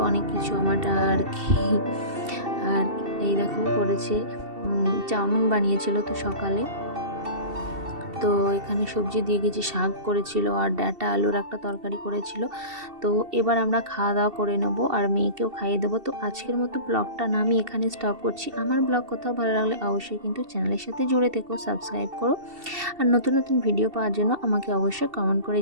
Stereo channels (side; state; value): left; late; 2.7 ms